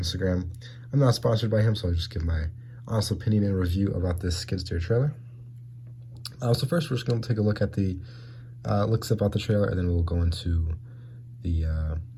I'm not sponsored by him, so I'll just give my honest opinion and review about this Skidsteer trailer. So first, we're just going to take a look at the looks about the trailer, and then we'll go into the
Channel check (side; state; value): both; identical; correlation 1.00